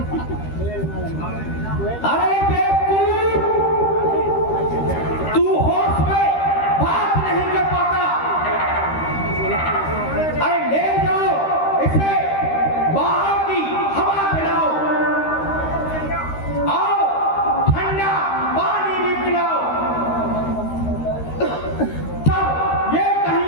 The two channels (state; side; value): late; right; 13 ms